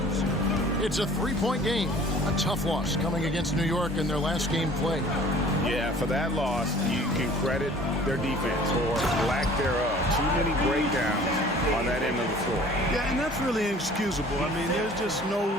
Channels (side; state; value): both; normal; correlation 0.49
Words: It's a 3-point game. A tough loss coming against New York in their last game played. Yeah, for that loss, you can credit their defense or lack thereof. Too many breakdowns on that end of the floor. Yeah, and that's really inexcusable. I mean, there's just no